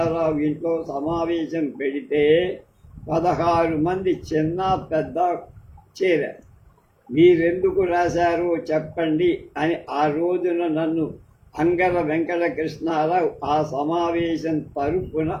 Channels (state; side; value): identical; both; correlation 1.00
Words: ఇంట్లో సమావేశం పెడితే 16 మంది చిన్న పెద్ద చేరారు. మీరెందుకు రాశారో చెప్పండి అని ఆ రోజున నన్ను అంగర వెంకటకృష్ణారావు ఆ సమావేశం తరపున